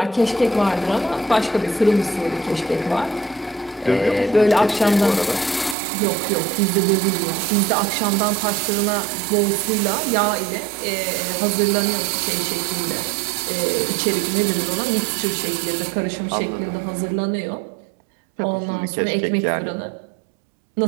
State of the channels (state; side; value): drops out; left; at 5.8 s